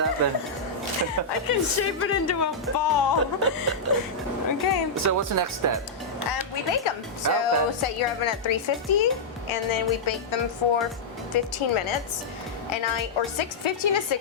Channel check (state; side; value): quieter; right; 3.6 dB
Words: I can shape it into a ball. Okay. So what's the next step? We bake them. So Okay. set your oven at 350, and then we bake them for 15 minutes. And 15 to